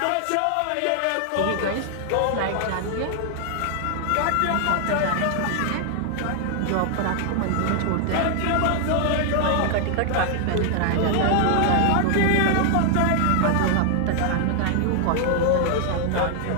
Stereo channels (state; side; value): different; both; correlation 0.00